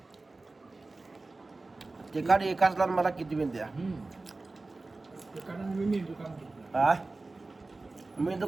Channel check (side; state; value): left; quieter; 3.3 dB